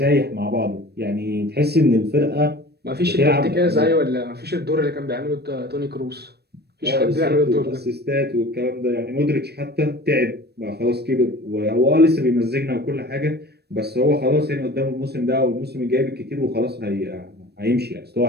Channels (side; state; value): left; late; 0.47 ms